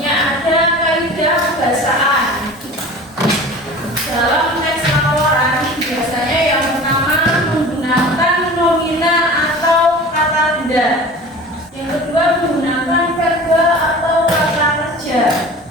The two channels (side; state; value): both; normal; correlation 0.39